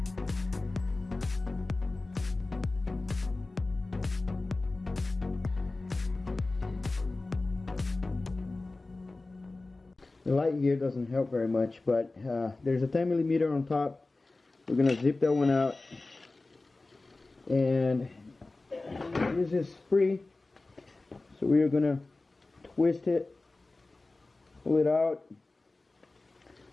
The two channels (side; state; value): right; quieter; 3.2 dB